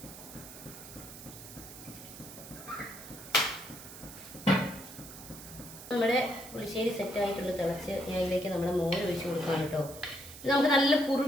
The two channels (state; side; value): noise; right; hiss, 14 dB below the sound